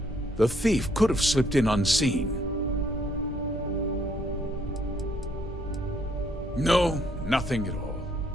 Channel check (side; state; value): both; normal; correlation 0.68